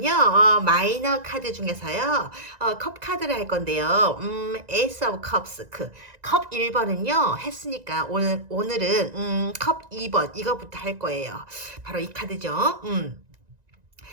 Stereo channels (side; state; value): left; late; 1.9 ms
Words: 마이너 카드 중에서요, 컵 카드를 할 건데요. 에이스 오브 컵스, 컵 1번은요, 했으니까, 오늘은, 컵 2번, 이거부터 할 거예요. 바로 이 카드죠.